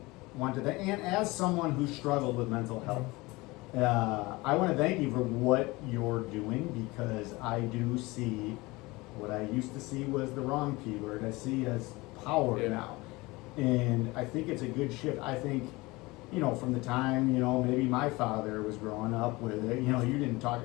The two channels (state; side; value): quieter; right; 22.4 dB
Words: to thank, and as someone who struggled with mental health, I want to thank you for what you're doing, because I do see what I used to see was the wrong P word. I see as power now. And I think it's a good shift. I think, from the time, maybe my father was growing up with it, you